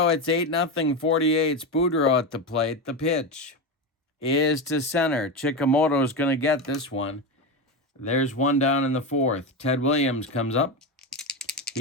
It's 8-0, 48. It's Boudreau at the plate. The pitch is to center. Chikamoto's going to get this one. There's one down in the fourth. Ted Williams comes up.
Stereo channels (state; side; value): normal; both; correlation 0.16